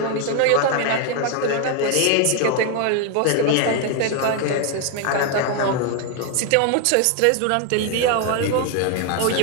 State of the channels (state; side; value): different; both; correlation 0.01